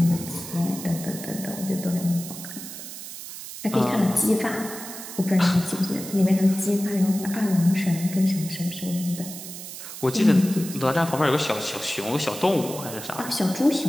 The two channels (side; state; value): right; noise; hiss, 11 dB below the sound